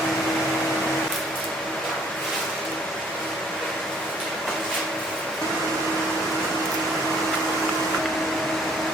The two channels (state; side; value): normal; both; correlation 0.61